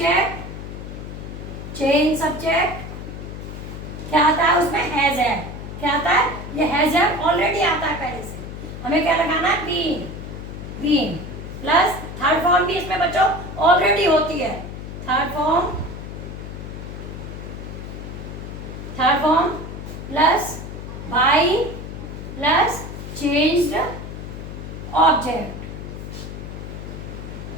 क्या आता है उसमें? Has had. क्या आता है? ये हैज हैड ऑलरेडी आता है पहले से। हमें क्या लगाना है? बीइंग प्लस थर्ड फॉर्म भी इसमें बच्चों ऑलरेडी होती है। Third form plus by plus changed object.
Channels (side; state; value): left; noise; hum, 9 dB below the sound